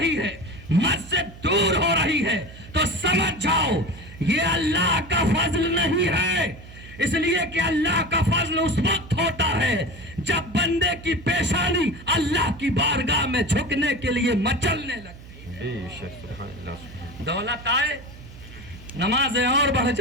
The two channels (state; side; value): noise; right; hum, 17 dB below the sound